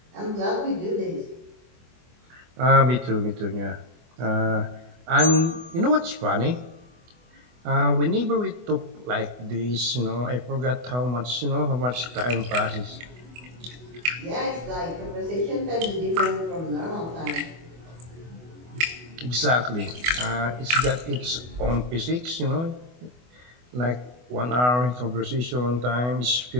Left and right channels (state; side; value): late; left; 24 ms